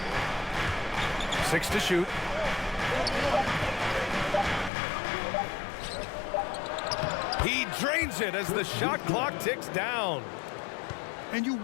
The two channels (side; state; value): right; drops out; at 4.7 s